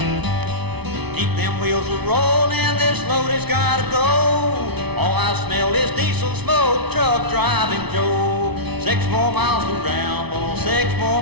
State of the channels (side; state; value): left; late; 0.99 ms